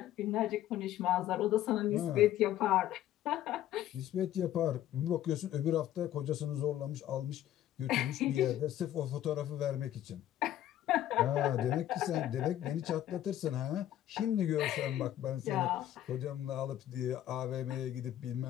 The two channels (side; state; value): right; quieter; 12.4 dB